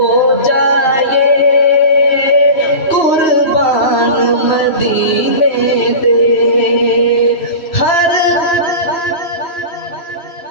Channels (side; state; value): right; late; 3.1 ms